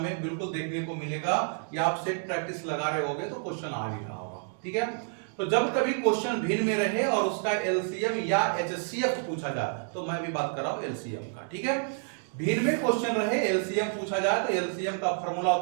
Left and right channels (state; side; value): silent; left; 56 dB below the other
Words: में बिल्कुल देखने को मिलेगा, या आप सेट प्रैक्टिस लगा रहे होगे तो क्वेश्चन आ भी रहा होगा, ठीक है। तो जब कभी क्वेश्चन भिन्न में रहे और उसका एलसीएम या एचसीएफ पूछा जाए, तो मैं भी बात कर रहा हूं एलसीएम का, ठीक है। भिन्न में क्वेश्चन रहे, एलसीएम पूछा जाए, तो एलसीएम का फॉर्मूला